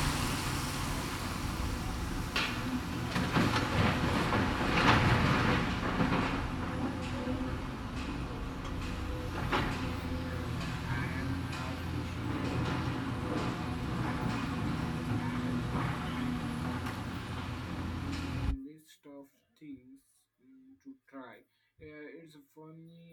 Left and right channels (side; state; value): both; identical; correlation 1.00